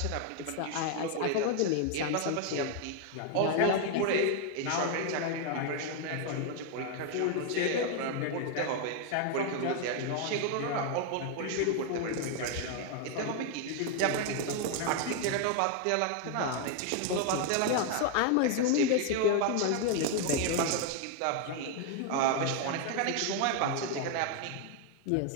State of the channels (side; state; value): both; different; correlation 0.01